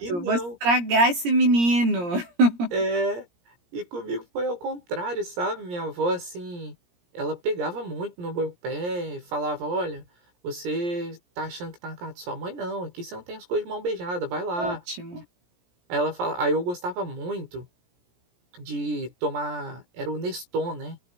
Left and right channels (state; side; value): late; left; 17 ms